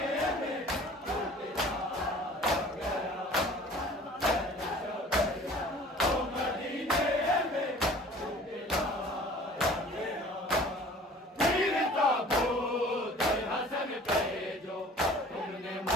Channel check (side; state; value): both; normal; correlation 0.48